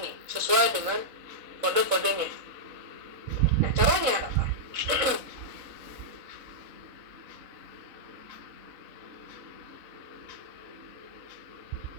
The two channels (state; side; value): late; left; 4.0 ms